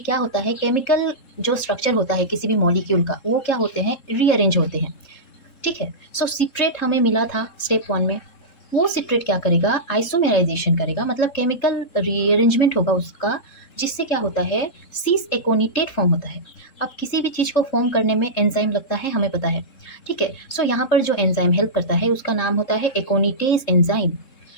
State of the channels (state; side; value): late; right; 3.7 ms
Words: होता है, केमिकल जो स्ट्रक्चर होता है किसी भी मॉलिक्यूल का, वो क्या होते हैं? रीअरेंज होते हैं, ठीक है। सो सिट्रेट हमें मिला था स्टेप 1 में, वो सिट्रेट क्या करेगा? आइसोमेराइजेशन करेगा, मतलब केमिकल रीअरेंजमेंट होगा उसका, जिससे क्या होता है? सीस एकोनिटेट फॉर्म होता है। अब किसी भी चीज़ को फॉर्म करने में एंजाइम लगता है, हमें पता है, ठीक है। सो यहाँ पर जो एंजाइम हेल्प करता है उसका नाम होता है एकोनिटेज एंजाइम।